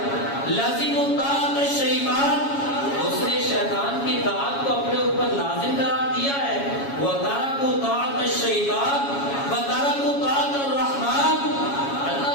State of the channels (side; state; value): right; late; 7.2 ms